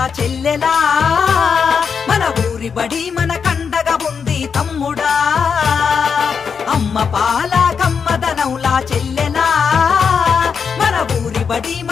చెల్లెలా, మన ఊరి బడి మన కండగా ఉంది తమ్ముడా. అమ్మ పాల కమ్మదనంలా చెల్లెలా, మన ఊరి బడి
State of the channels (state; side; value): quieter; right; 6.3 dB